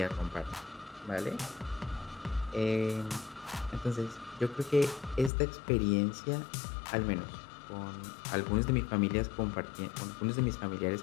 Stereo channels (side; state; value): right; drops out; at 5.3 s